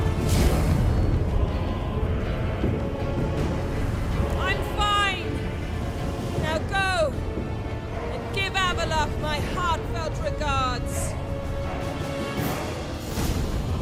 I'm fine! Now go! And give Avalok my heartfelt regards!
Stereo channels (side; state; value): both; identical; correlation 1.00